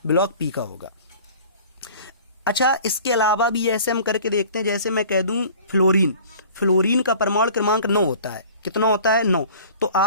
ब्लॉक p का होगा। अच्छा, इसके अलावा भी ऐसे हम करके देखते हैं। जैसे मैं कह दूं फ्लोरीन, फ्लोरीन का परमाणु क्रमांक 9 होता है। कितना होता है? 9। तो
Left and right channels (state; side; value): inverted; both; correlation -0.47